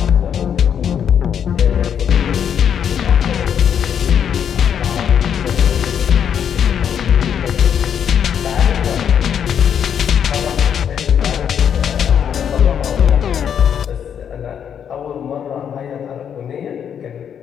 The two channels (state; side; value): quieter; right; 8.4 dB